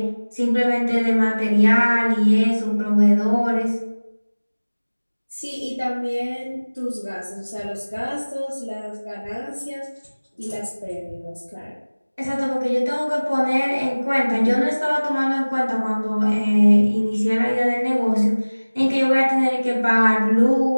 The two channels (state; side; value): inverted; both; correlation -1.00